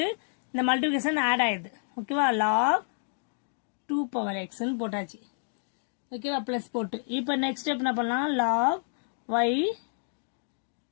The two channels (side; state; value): right; silent; digital silence